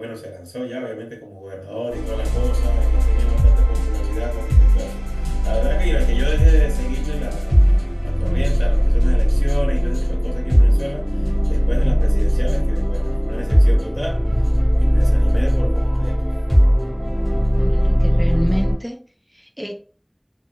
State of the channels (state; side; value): identical; both; correlation 1.00